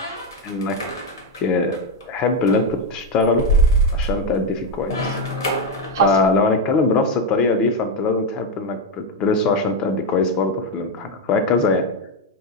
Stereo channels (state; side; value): normal; both; correlation 0.06